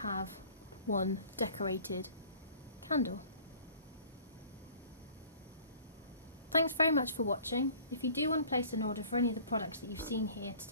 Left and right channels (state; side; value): inverted; both; correlation -0.49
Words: one decorated candle. Thanks very much for watching. If you do want to place an order for any of the products that you've seen here